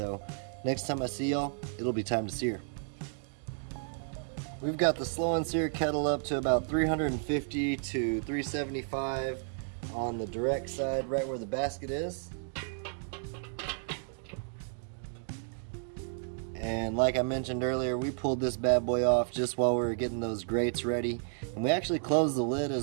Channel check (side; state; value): left; silent; digital silence